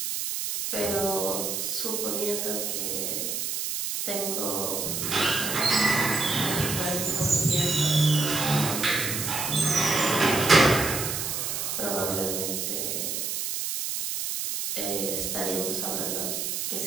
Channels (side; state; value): right; noise; hiss, 2 dB below the sound